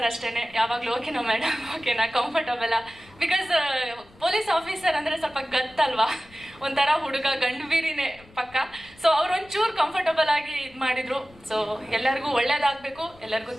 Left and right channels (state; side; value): noise; left; rumble, 25 dB below the sound